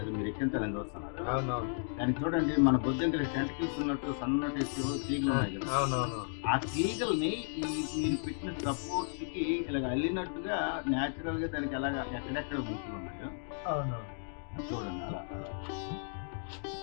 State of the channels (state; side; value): silent; right; digital silence